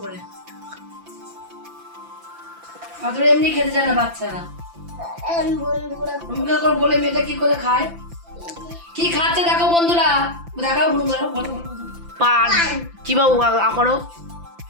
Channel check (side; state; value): left; late; 5.9 ms